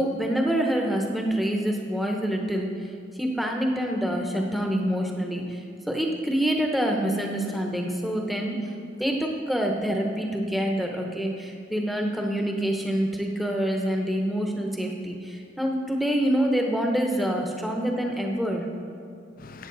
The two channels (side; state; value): both; normal; correlation 0.81